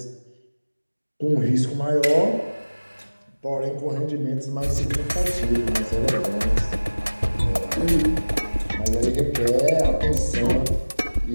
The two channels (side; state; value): both; inverted; correlation -1.00